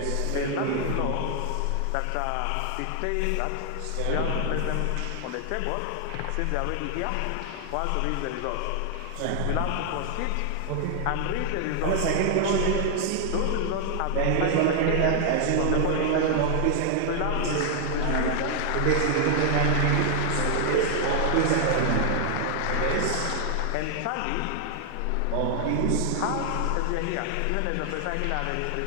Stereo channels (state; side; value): different; both; correlation 0.00